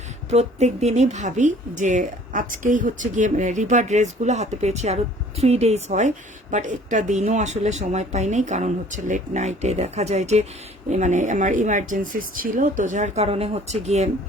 প্রত্যেক দিনই ভাবি যে আজকেই হচ্ছে গিয়ে রিভার ড্রেসগুলো হাতে পেয়েছি, আরও 3 days হয়, বাট একটা দিনও আসলে সময় পাই নাই, কারণ হচ্ছে লেট নাইটে দেখা যায় যে মানে আমার ইমার্জেন্সিস ছিল, তো যার কারণে হচ্ছে গিয়ে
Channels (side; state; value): both; normal; correlation 0.53